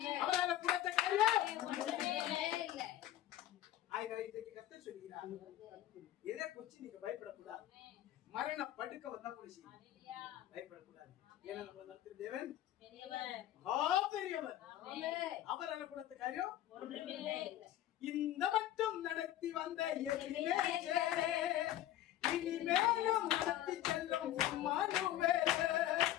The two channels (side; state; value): right; quieter; 13.0 dB